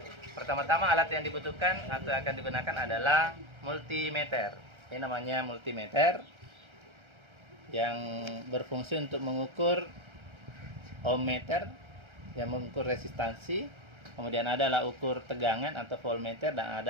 Pertama-tama alat yang dibutuhkan atau akan digunakan adalah multimeter. Ini namanya multimeter yang berfungsi untuk mengukur ohmmeter yang mengukur resistansi, kemudian ada alat ukur tegangan atau voltmeter, dan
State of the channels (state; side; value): late; left; 1.3 ms